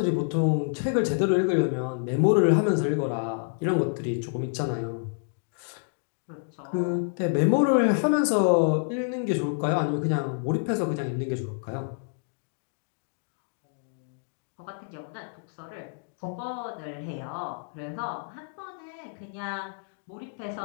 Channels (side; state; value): right; silent; digital silence